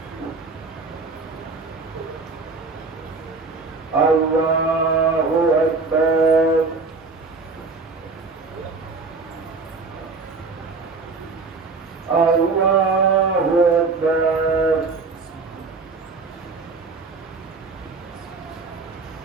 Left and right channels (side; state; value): left; quieter; 4.1 dB